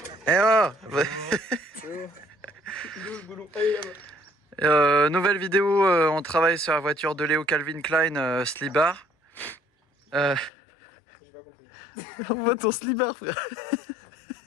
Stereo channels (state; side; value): drops out; right; at 10.5 s